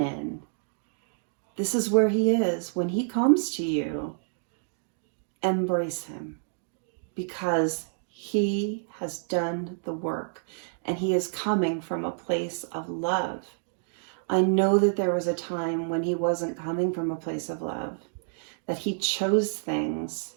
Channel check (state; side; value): silent; left; digital silence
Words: This is where he is. When he comes to you, embrace him. Because he has done the work. And he is coming from a place of love. I know that there was a time when he wasn't coming from a place of love. That he chose things